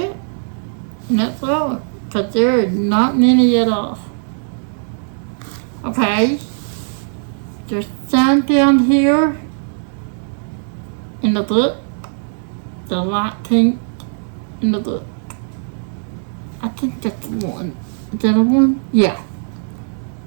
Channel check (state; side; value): silent; left; digital silence